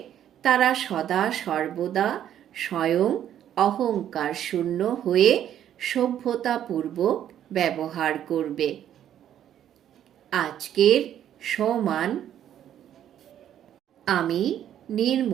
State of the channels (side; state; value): left; quieter; 10.6 dB